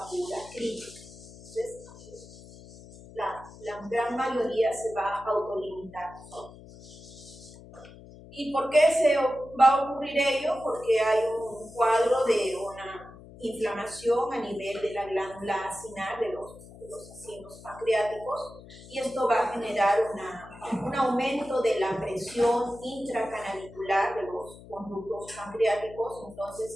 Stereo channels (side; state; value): left; noise; hum, 18 dB below the sound